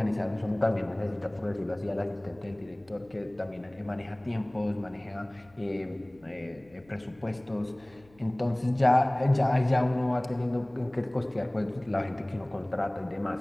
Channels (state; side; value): noise; left; hum, 28 dB below the sound